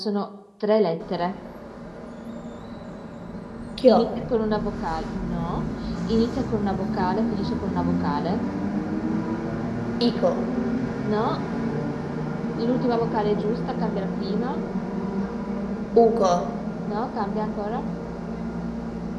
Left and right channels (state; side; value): identical; both; correlation 1.00